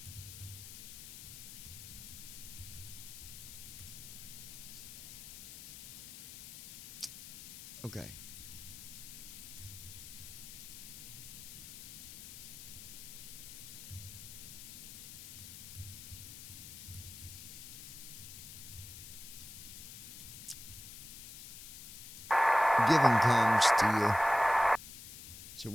Okay. Giving comes to you. So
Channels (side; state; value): left; noise; hiss, 12 dB below the sound